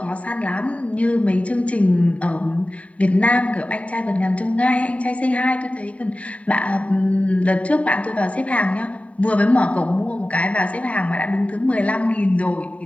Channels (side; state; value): right; late; 0.066 ms